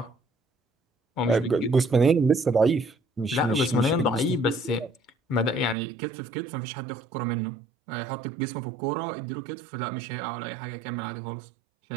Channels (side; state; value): left; drops out; at 5.8 s